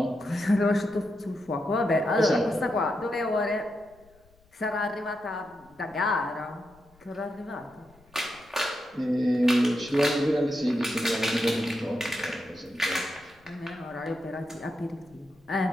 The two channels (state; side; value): noise; left; rumble, 29 dB below the sound